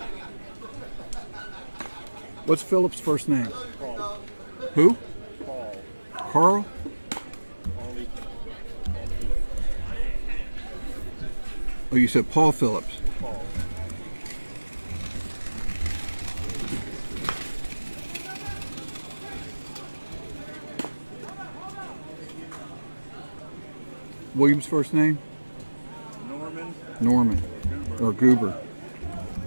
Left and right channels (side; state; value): both; inverted; correlation -1.00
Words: What's Philip's first name? Paul. Who? Paul. Carl? Only. Oh, you said Paul Phillips. Paul. William's first name? Norman. Norman. Goober. Or Goober.